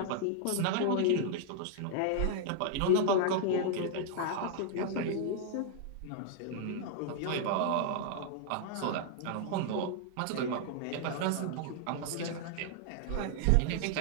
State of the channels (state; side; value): different; both; correlation -0.01